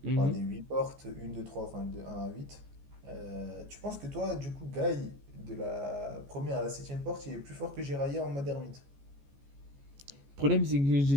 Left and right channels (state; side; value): late; left; 14 ms